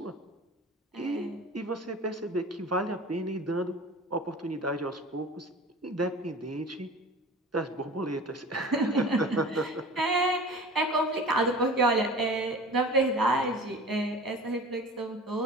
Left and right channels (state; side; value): normal; both; correlation 0.39